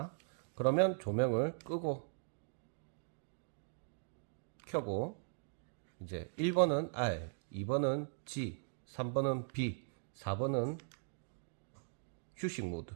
그러면 조명을 끄고 켜고 이제 1번은 R, 2번은 G, 3번은 B, 4번은 휴식 모드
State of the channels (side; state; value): left; silent; digital silence